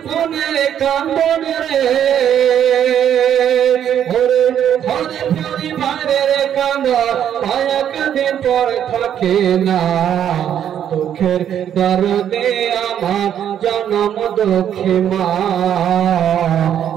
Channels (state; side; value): quieter; left; 9.7 dB